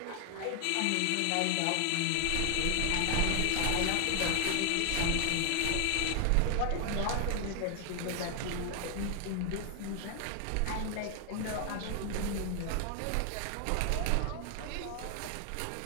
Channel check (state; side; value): different; both; correlation 0.00